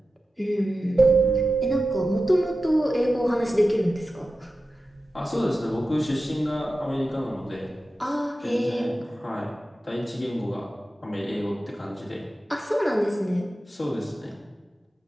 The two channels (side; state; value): both; normal; correlation 0.93